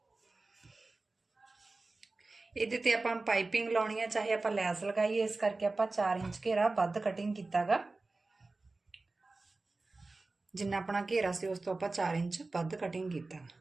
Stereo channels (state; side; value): quieter; left; 3.4 dB